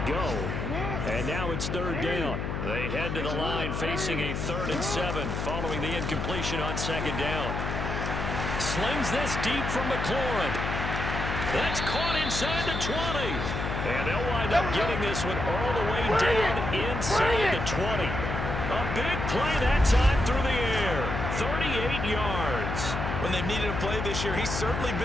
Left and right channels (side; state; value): left; noise; hum, 3 dB below the sound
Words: go. And now it's third down. They head to the line facing a 3rd and 7 following the incompletion on second down. Slings this deep from McLaurin. That's caught inside the 20. And they'll wind up getting this one all the way down inside the 20. A big play that time through the air. 38 yards. When they've needed a play this year, he's certainly